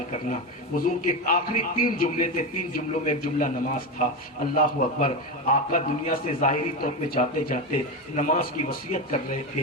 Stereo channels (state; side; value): normal; both; correlation 0.16